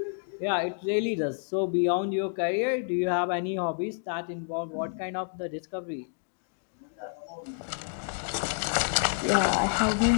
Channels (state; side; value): silent; right; digital silence